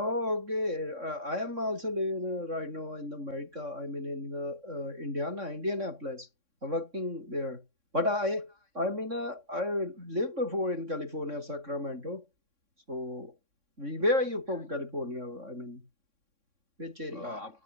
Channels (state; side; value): late; left; 3.6 ms